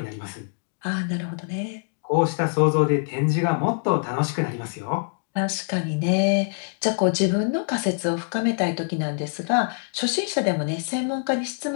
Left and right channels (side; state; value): right; silent; 62 dB below the other